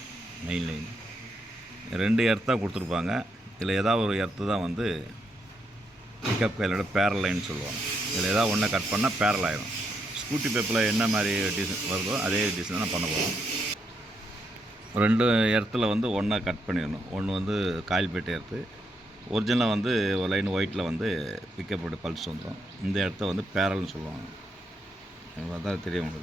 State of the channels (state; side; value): normal; both; correlation 0.79